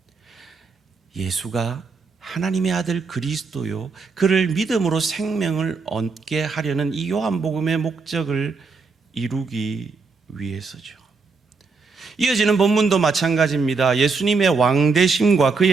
예수가 하나님의 아들 그리스도요, 그를 믿음으로 생명을 얻게 하려는 이 요한복음의 목적을 이루기 위해서죠. 이어지는 본문도 마찬가지입니다. 예수님의 왕되심과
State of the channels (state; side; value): quieter; left; 4.5 dB